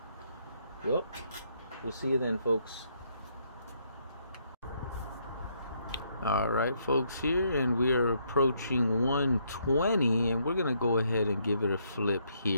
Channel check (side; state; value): both; inverted; correlation -0.73